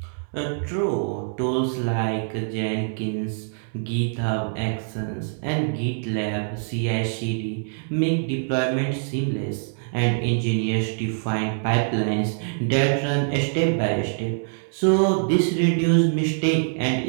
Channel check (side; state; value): left; silent; digital silence